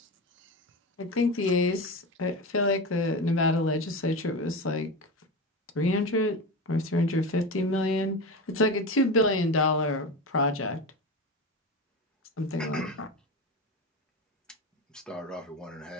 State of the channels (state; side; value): normal; both; correlation 0.23